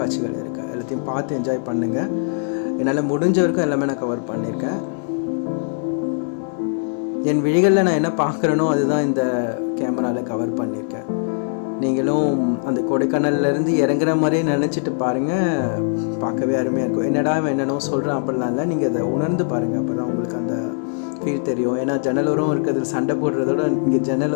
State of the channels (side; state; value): right; silent; 65 dB below the other